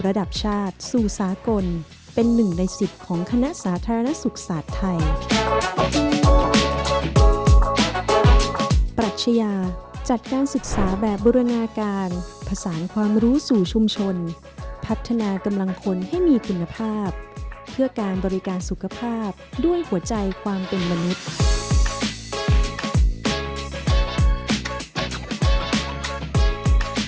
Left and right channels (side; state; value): both; identical; correlation 1.00